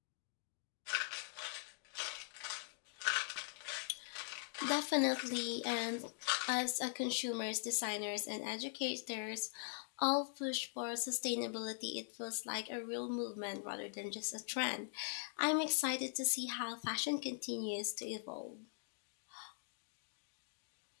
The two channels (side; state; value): right; silent; digital silence